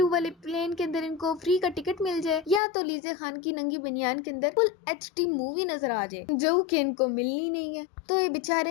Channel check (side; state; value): right; drops out; at 2.6 s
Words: वाले प्लेन के अंदर इनको फ्री का टिकट मिल जाए, या तो लीजे खान की नंगी बनियान के अंदर फुल HD मूवी नजर आ जाए, जो कि इनको मिलनी नहीं है। तो ये